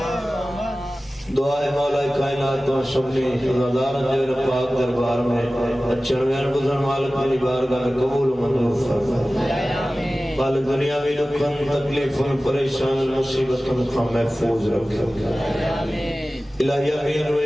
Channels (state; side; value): normal; both; correlation 0.96